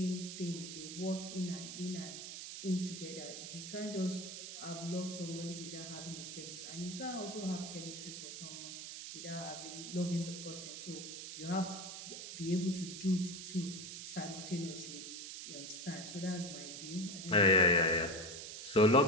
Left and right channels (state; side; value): noise; right; hiss, 8 dB below the sound